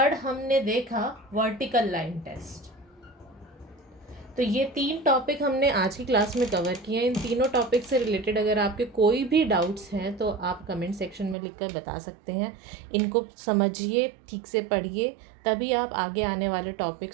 हमने देखा vertical line test. तो ये 3 topic हमने आज की class में कवर किए हैं. इन तीनों टॉपिक से रिलेटेड अगर आपके कोई भी डाउट्स हैं तो आप कमेंट सेक्शन में लिखकर बता सकते हैं. इनको समझिए, ठीक से पढ़िए, तभी आप आगे आने वाले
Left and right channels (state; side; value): drops out; left; at 11.4 s